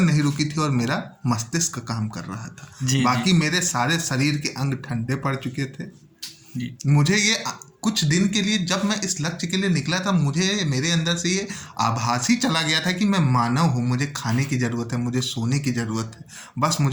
नहीं रुकी थी और मेरा मस्तिष्क काम कर रहा था। बाकी मेरे सारे शरीर के अंग ठंडे पड़ चुके थे। मुझे ये कुछ दिन के लिए, जब मैं इस लक्ष्य के लिए निकला था, मुझे मेरे अंदर से ये आभास ही चला गया था कि मैं मानव हूँ, मुझे खाने की ज़रूरत है, मुझे सोने की ज़रूरत है। बस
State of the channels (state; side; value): identical; both; correlation 1.00